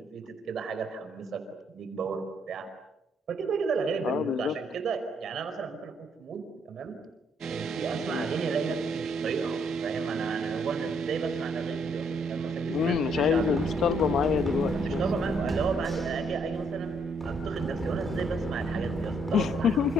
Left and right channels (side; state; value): both; normal; correlation 0.70